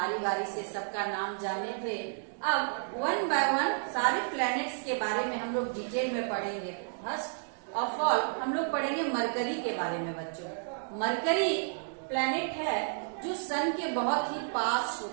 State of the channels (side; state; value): left; silent; digital silence